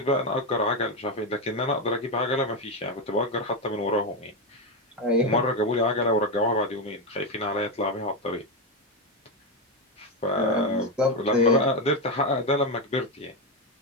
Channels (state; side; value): normal; both; correlation 0.10